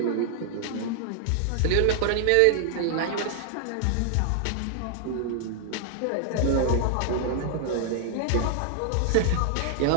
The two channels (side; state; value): both; different; correlation -0.01